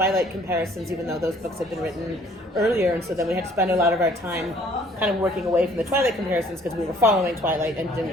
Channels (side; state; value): both; normal; correlation 0.57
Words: comparisons, even though those books had been written earlier. And so then we had to spend a lot of our time kind of working away from the Twilight comparisons because we were following Twilight and didn't